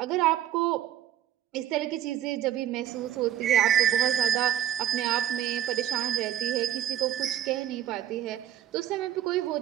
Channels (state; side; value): quieter; left; 11.4 dB